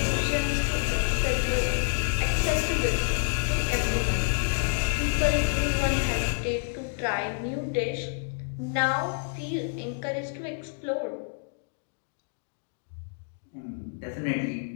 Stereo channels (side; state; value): right; silent; digital silence